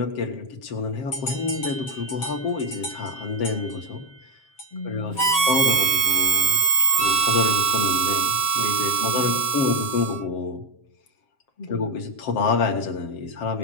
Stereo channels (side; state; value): right; late; 7.5 ms